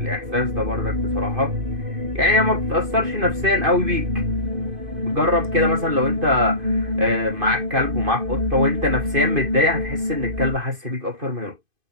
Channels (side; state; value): left; late; 2.5 ms